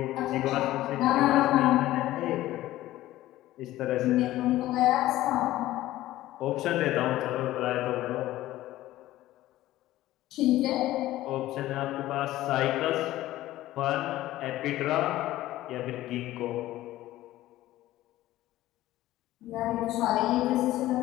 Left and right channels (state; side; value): quieter; right; 15.5 dB